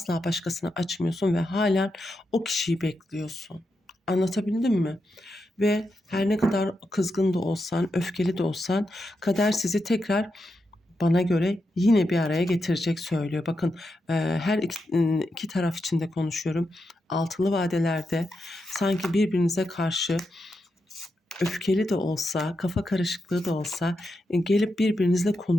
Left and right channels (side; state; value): both; normal; correlation 0.86